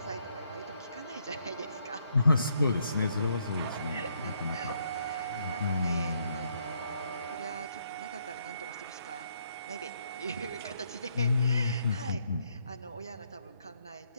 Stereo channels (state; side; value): inverted; both; correlation -0.73